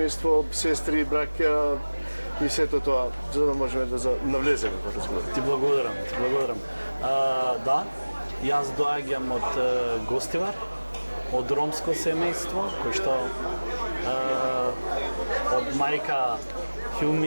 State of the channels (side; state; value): both; inverted; correlation -1.00